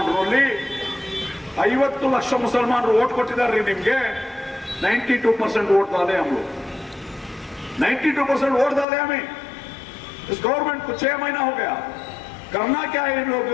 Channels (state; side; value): drops out; right; at 8.8 s